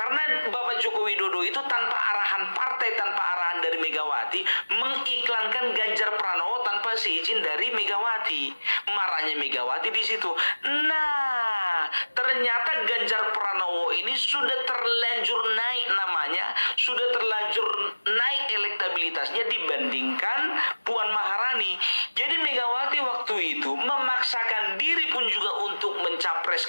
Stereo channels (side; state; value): both; inverted; correlation -1.00